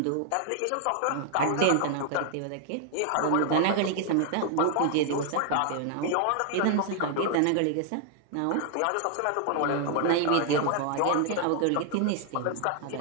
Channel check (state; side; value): different; both; correlation 0.00